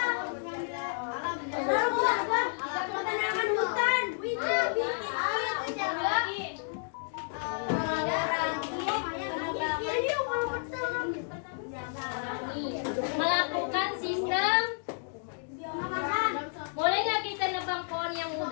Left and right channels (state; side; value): silent; right; 57 dB below the other